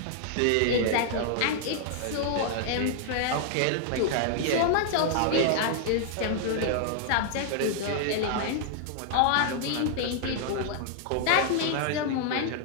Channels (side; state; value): both; different; correlation -0.01